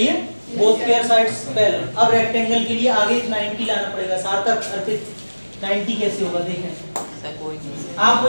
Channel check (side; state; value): both; inverted; correlation -1.00